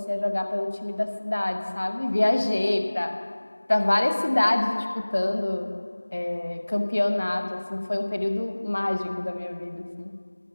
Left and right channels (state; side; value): inverted; both; correlation -1.00